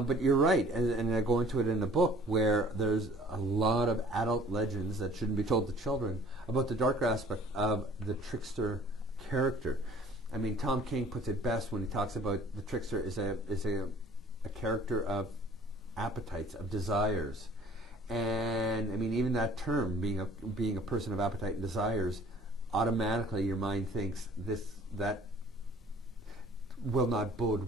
you're right, and I go into it in the book where there's a lot of adult legends that shouldn't be told to children about the darker aspect of the trickster character. I mean, Tom King puts it best when he talks about the trickster is a character of appetites, of desires. And I mean, even that term, being a person of appetite and desires, automatically your mind thinks that will not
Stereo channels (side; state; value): both; normal; correlation 0.53